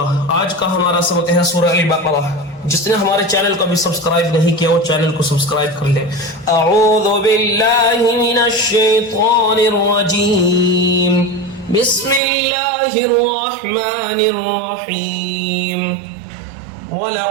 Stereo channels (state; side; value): drops out; left; at 12.2 s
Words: आज का हमारा सबक है सूरह अल-बक़रा। जिसने हमारे चैनल को अभी सब्सक्राइब नहीं किया वो चैनल को सब्सक्राइब कर ले। अऊज़ु बिल्लाहि मिनश शैतानिर रजीम। बिस्मिल्लाहिर रहमानिर रहीम।